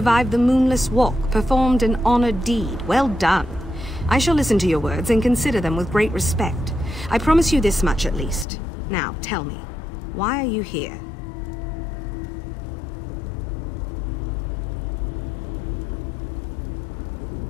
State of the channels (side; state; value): right; drops out; at 8.5 s